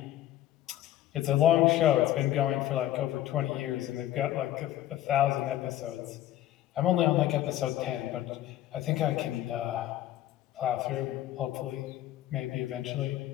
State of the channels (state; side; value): quieter; right; 13.2 dB